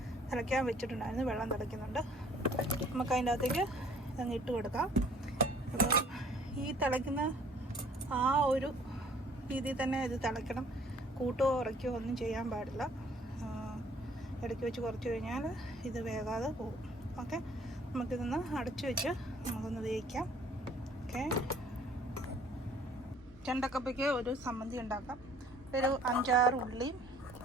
തിളയ്ക്കാൻ വെച്ചിട്ടുണ്ടായിരുന്നു. വെള്ളം തിളയ്ക്കുന്നുണ്ട്. നമുക്ക് അതിൻ്റെ അകത്തേക്ക് ഇതങ്ങ് ഇട്ട് കൊടുക്കാം. അപ്പോൾ ഈ തിളയ്ക്കുന്ന ആ ഒരു രീതിയിൽ തന്നെ ഇത് തിളയ്ക്കണം. കൂട്ടോ ഉറയ്ക്കോ ഒന്നും ചെയ്യാൻ പാടില്ല. ഇടയ്ക്ക് വെച്ച് കുറച്ച് കഴിഞ്ഞാൽ ഇത് വേകാതെ പോകും. ഓക്കെ, നമുക്കിതൊന്ന് അടച്ചു വെച്ച് നമുക്കൊന്ന് വേവിക്കാം. ഓക്കെ, ചെണ്ടക്കപ്പയ്ക്ക് ഒരു സമ്മന്തി ഉണ്ടാക്കാം. ഒരു 5-6 ഉള്ളിയും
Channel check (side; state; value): both; normal; correlation 0.57